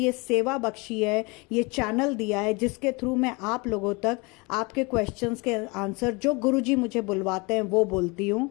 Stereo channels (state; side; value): quieter; right; 27.8 dB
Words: सेवा बख्शी है, ये चैनल दिया है जिसके थ्रू मैं आप लोगों तक आपके क्वेश्चंस के आंसर जो गुरुजी मुझे बुलवाते हैं वो बोलती हूँ।